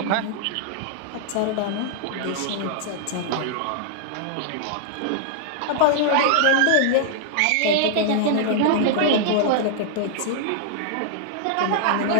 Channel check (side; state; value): both; different; correlation -0.01